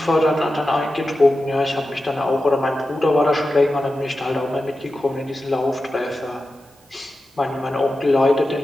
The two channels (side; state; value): both; normal; correlation 0.92